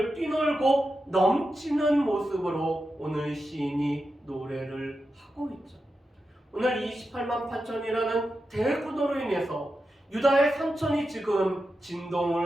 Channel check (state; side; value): normal; both; correlation 0.89